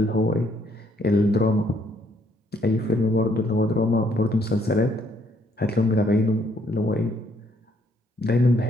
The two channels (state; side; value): normal; both; correlation 0.69